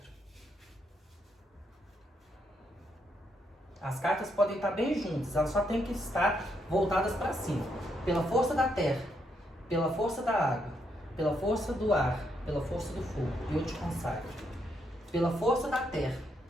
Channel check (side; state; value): both; normal; correlation 0.77